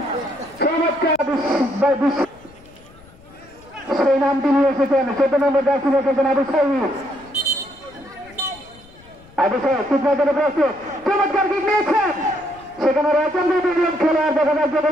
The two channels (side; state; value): left; noise; rumble, 25 dB below the sound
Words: চমৎকার সেই নামটি নিয়ে এসেছেন 14 নম্বর জার্সি এসেছেন আবু সাইদ কিকমার্কের প্রস্তুত চমৎকার কিক নিয়েছেন সেখানে রয়েছেন দুজন খেলোয়াড় দেখা যাচ্ছে